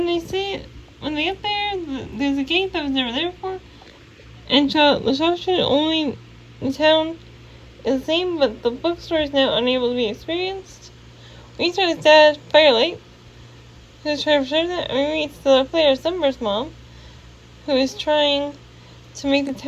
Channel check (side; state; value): both; identical; correlation 1.00